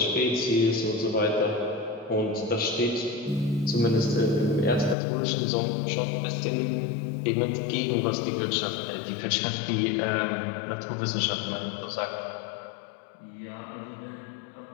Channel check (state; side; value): drops out; right; at 5.0 s